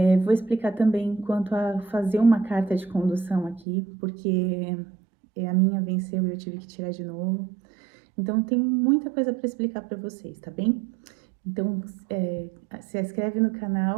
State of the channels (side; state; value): left; drops out; at 3.7 s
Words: Vou explicar também quanto a fazer uma carta de condução aqui, porque a minha venceu e eu tive que tirar de novo. Então, tem muita coisa para explicar para vocês, tá bem? Então, se inscreve no